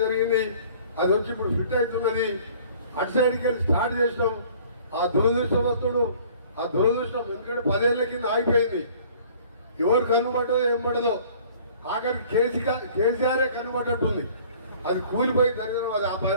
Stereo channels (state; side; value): inverted; both; correlation -0.52